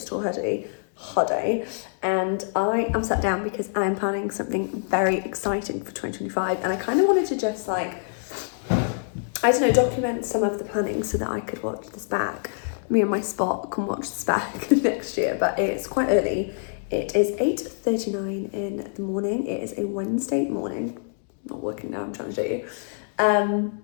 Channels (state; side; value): silent; right; digital silence